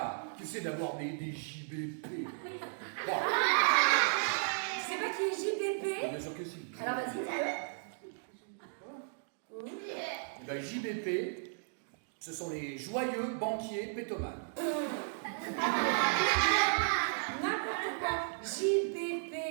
Tu sais d'avoir des JBP. Bon. Tu sais pas qui est JBP? Bien sûr que si. Alors vas-y, dis-le. Eh ben, JBP, ce sont les joyeux banquiers pétomanes. N'importe quoi. JBP,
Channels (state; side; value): silent; left; digital silence